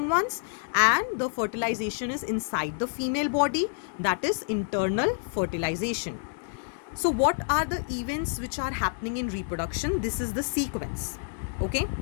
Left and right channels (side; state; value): right; silent; digital silence